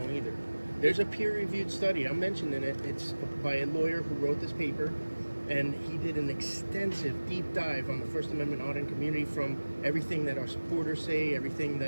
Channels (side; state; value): both; inverted; correlation -1.00